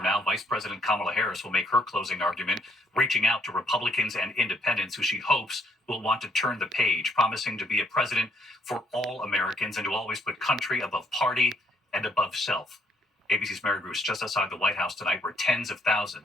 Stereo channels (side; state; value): both; normal; correlation 0.68